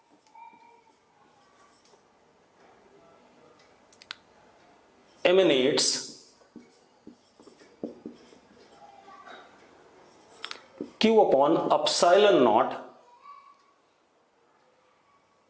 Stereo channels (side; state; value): both; identical; correlation 1.00